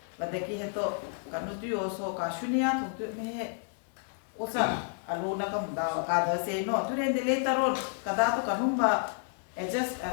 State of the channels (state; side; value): silent; right; 56 dB below the other